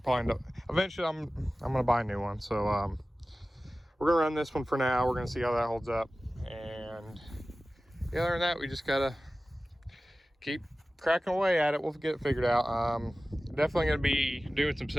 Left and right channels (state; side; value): normal; both; correlation 0.96